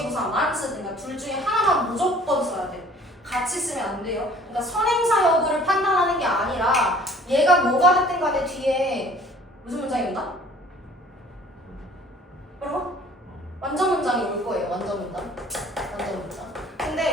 쓰든가 둘 중에 하나만 무조건 써야 돼. 같이 쓰면 안 돼요. 그러니까 선행사 여부를 판단하는 게 아니라 얘가 뭐가 됐든 간에 뒤에 무슨 문장이 온다? 그럼 완전 문장이 올 거예요. 완전 문장.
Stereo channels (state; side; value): normal; both; correlation 0.52